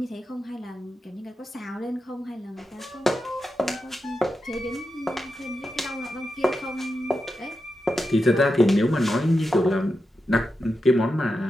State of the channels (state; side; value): normal; both; correlation 0.89